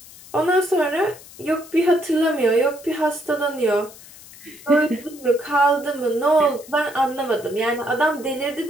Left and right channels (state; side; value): noise; left; hiss, 20 dB below the sound